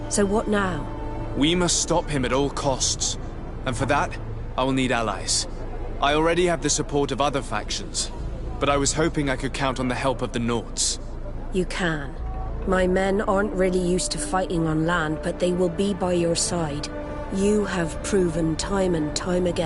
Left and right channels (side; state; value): both; identical; correlation 1.00